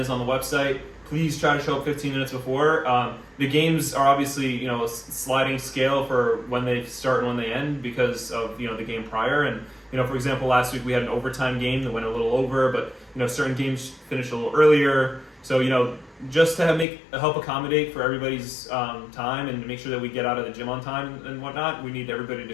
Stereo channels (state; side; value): drops out; right; at 16.9 s